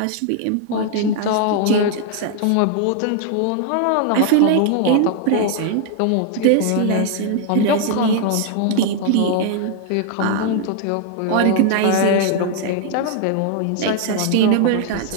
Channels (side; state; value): both; different; correlation 0.00